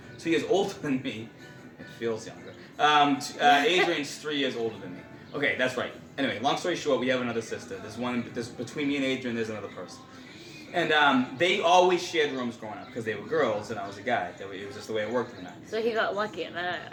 2 years older than me. It feels younger. Adrian's 3 years older than me. Okay, that's right. Anyway, long story short, we have another sister. There's between me and Adrian, there's another person. And they always shared rooms growing up because they were girls and I was a guy. It was just the way it worked in the 90s. So he got lucky in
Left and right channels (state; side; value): identical; both; correlation 1.00